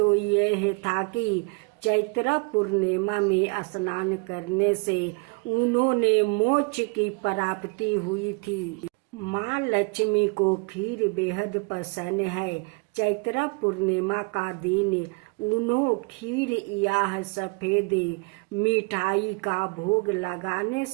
यह था कि चैत्रा पूर्णिमा में स्नान करने से उन्होंने मोक्ष की प्राप्ति हुई थी। माँ लक्ष्मी को खीर बेहद पसंद है। चैत्रा पूर्णिमा का दिन उन्होंने खीर या सफेद मिठाई का भोग लगाने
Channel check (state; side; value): quieter; left; 32.0 dB